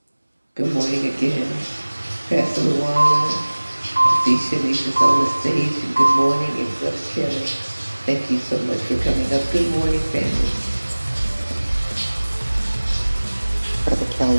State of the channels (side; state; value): both; inverted; correlation -1.00